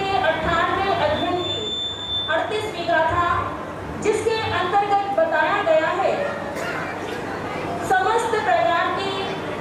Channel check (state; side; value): identical; both; correlation 1.00